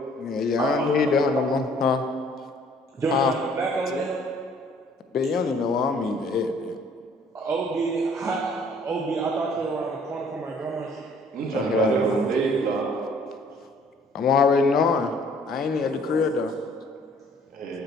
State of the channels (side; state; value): both; normal; correlation 0.58